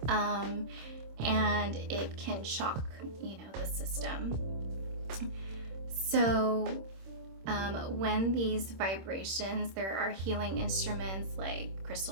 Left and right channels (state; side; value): late; left; 26 ms